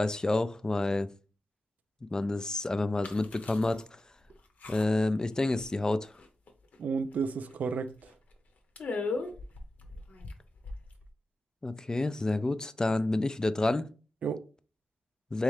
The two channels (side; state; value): both; normal; correlation 0.93